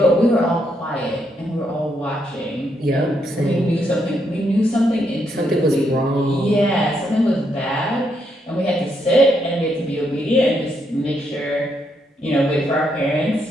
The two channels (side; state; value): both; normal; correlation 0.77